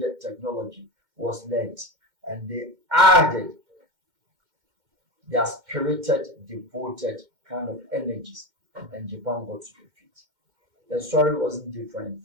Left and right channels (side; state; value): left; late; 2.1 ms